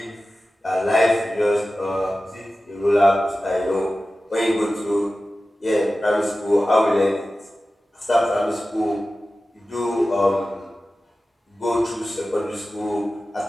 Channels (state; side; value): normal; both; correlation 0.95